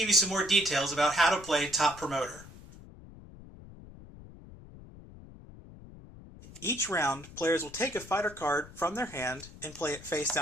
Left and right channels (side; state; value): left; noise; rumble, 18 dB below the sound